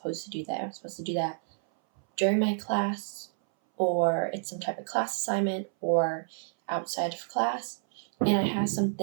to do that. I'm supposed to do that during my class, or it's some type of class assignment, or outside of class. And I have some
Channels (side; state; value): left; silent; 58 dB below the other